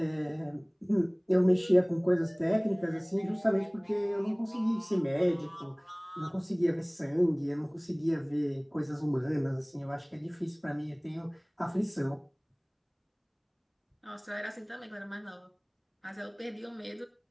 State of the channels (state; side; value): identical; both; correlation 1.00